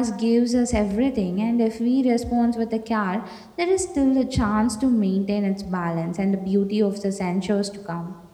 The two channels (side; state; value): both; identical; correlation 1.00